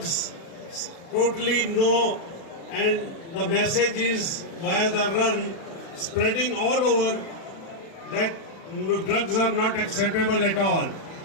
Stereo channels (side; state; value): right; late; 36 ms